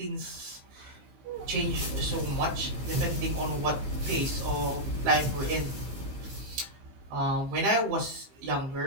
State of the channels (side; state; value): left; late; 15 ms